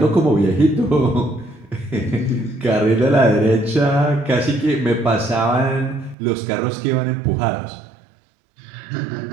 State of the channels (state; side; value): drops out; left; at 6.2 s